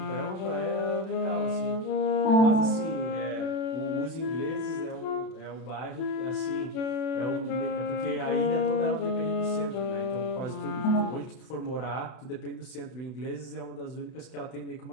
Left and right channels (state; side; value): late; right; 31 ms